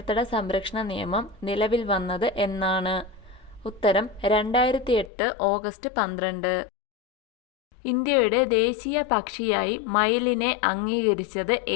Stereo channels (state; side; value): drops out; right; at 5.1 s